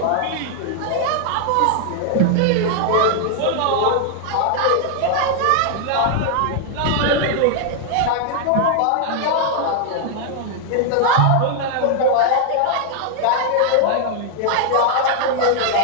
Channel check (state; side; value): different; both; correlation 0.00